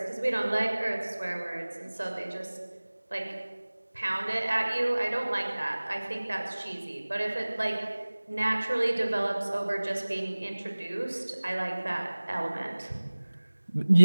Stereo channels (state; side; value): inverted; both; correlation -1.00